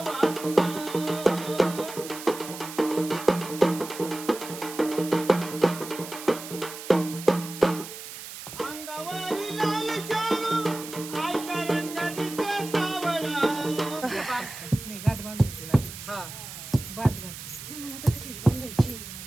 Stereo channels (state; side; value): noise; right; hiss, 11 dB below the sound